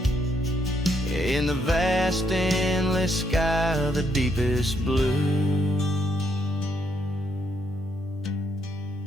in the vast endless sky of the deepest blue.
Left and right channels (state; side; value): normal; both; correlation 0.75